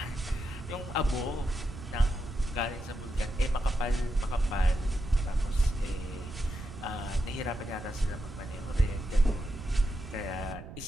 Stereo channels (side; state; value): right; noise; rumble, 12 dB below the sound